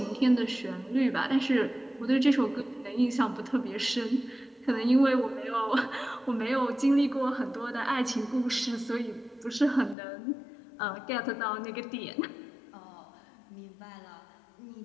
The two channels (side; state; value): right; drops out; at 10.0 s